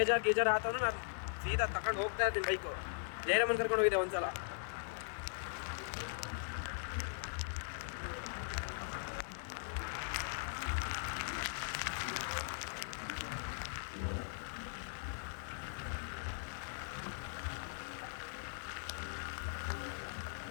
ಆತಂದ್ರೆ ನಾನು ಸೀದಾ ತಗೊಂಡು ಹೋಗ್ತಾ ಇರ್ತೀನಿ ಬೈಕು. ಜಯರಾಮನ್ ಕರ್ಕೊಂಡು ಹೋಗಿದ್ದೆ ಒಂದ್ಸಲ.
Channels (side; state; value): right; silent; 51 dB below the other